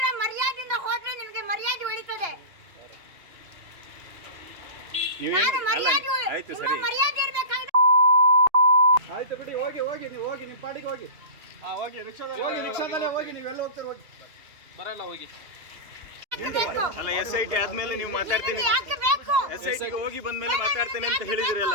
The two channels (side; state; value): left; late; 2.8 ms